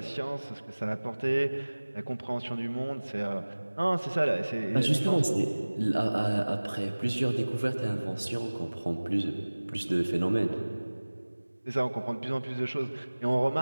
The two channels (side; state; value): both; inverted; correlation -1.00